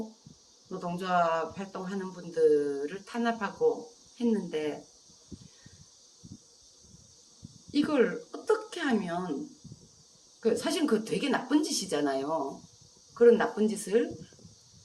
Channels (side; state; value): both; identical; correlation 1.00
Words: 노동조합 활동하는 분들을 탄압하고 했는데 이걸 어떻게 하면 사실 그 되게 나쁜 짓이잖아요. 그런 나쁜 짓을